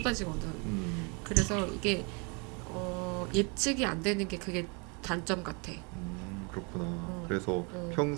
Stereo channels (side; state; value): left; quieter; 32.9 dB